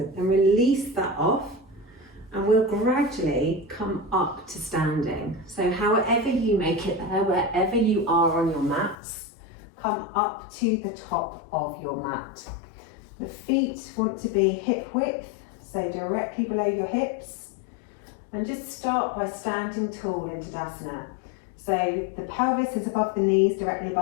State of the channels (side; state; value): right; drops out; at 9.0 s